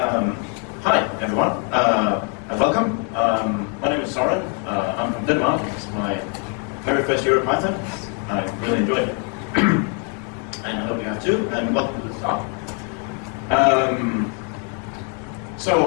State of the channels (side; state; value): right; quieter; 36.7 dB